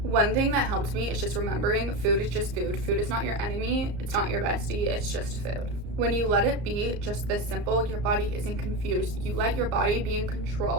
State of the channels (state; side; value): late; left; 34 ms